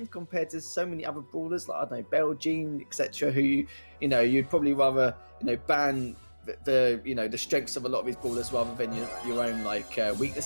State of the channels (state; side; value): inverted; both; correlation -1.00